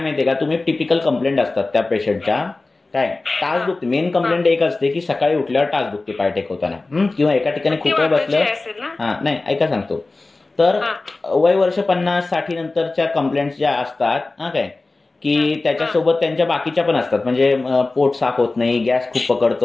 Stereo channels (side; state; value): right; quieter; 3.3 dB